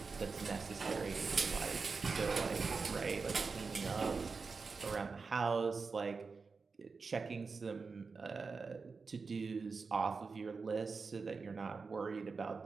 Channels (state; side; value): quieter; left; 4.6 dB